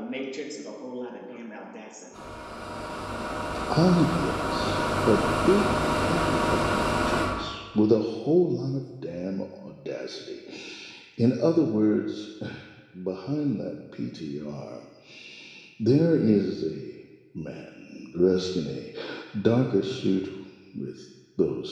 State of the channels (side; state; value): both; identical; correlation 1.00